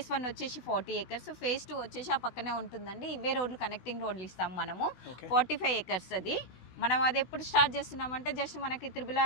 1 వచ్చేసి 40 acres, ఫేస్ 2 వచ్చేసి ఆ పక్కనే ఉంటుందండి. ఇవే రోడ్లు కనెక్టింగ్ రోడ్లు ఇస్తాం మనము. 45 acres అది. మనం అది ఎప్పుడు స్టార్ట్ చేస్తున్నామంటే జస్ట్ మనకి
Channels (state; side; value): late; right; 16 ms